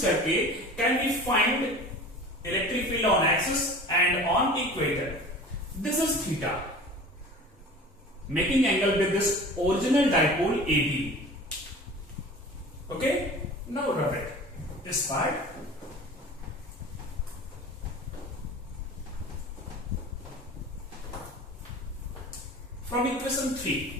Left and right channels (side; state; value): both; normal; correlation 0.39